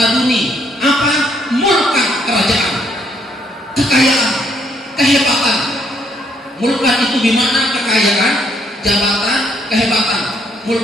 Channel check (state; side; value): normal; both; correlation 0.69